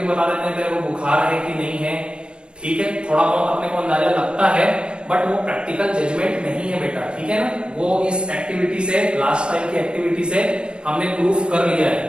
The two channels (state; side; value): late; left; 0.053 ms